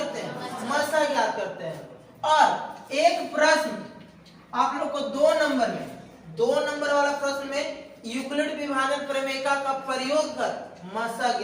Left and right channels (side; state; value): both; identical; correlation 1.00